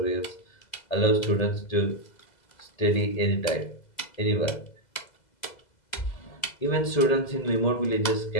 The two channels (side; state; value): right; late; 2.0 ms